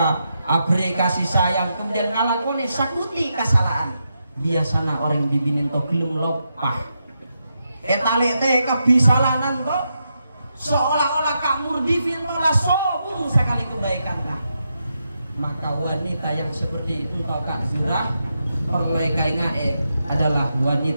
abri kasih sayang, kemudian ngalakoni sakuti kesalahan, biasana orang dibinin to gelem lopah etalete kebisalanan to seolah-olah Kak Murdifi lah sobung sekali kebaikan dah. Maka wanita yang seperti itu to Kak Zurah perlekainga adalah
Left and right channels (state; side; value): inverted; both; correlation -0.84